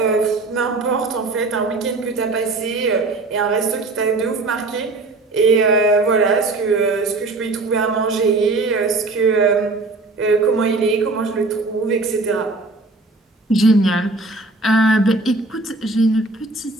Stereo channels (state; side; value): quieter; left; 3.3 dB